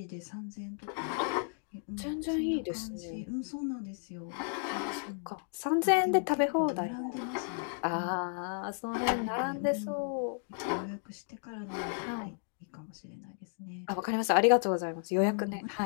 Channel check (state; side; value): silent; right; 55 dB below the other